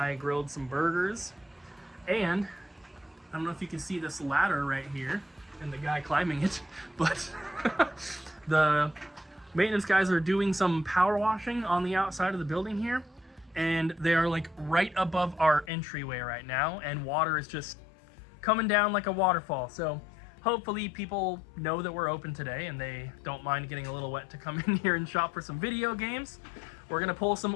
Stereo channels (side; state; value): right; drops out; at 15.7 s